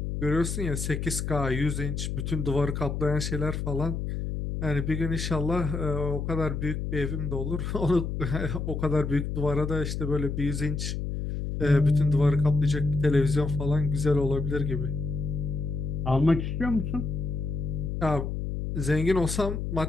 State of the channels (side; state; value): left; noise; hum, 3 dB below the sound